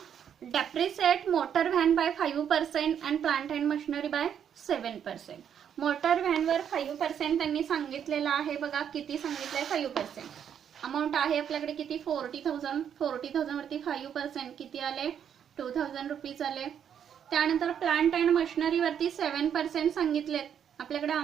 Depreciate motor van by 5% and plant and machinery by 7%. Motor व्हॅनवर 5% त्यांनी सांगितलेलं आहे बघा. किती सांगितलंय, 5%. अमाऊंट आहे आपल्याकडे किती, 40,000. 40,000 वरती 5% किती आले, ₹2,000 आले. त्यानंतर प्लांट अँड मशिनरी वरती 7% सांगितलेत. आपल्याकडे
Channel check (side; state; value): left; quieter; 8.6 dB